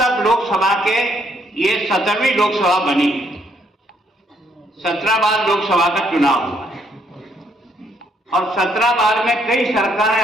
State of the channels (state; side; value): normal; both; correlation 0.71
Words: लोकसभा के ये 17वीं लोकसभा बनी, 17 बार लोकसभा का चुनाव हुआ है और 17 बार में कई सरकारें